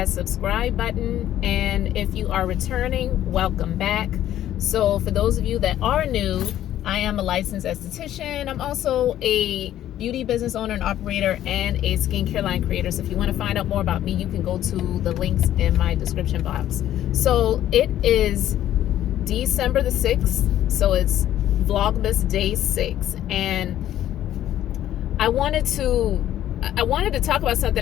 subscribe button, and if you are returning, welcome back. So for those of you that are new, I am a licensed esthetician. I'm also a beauty business owner and operator and a skincare line creator. So if you want to find out more about me, you can go to the links in my description box. So it is December the 6th. So it's Vlogmas day 6. And I wanted to talk about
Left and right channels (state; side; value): quieter; right; 12.2 dB